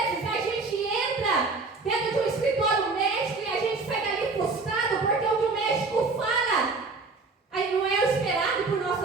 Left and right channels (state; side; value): quieter; left; 3.9 dB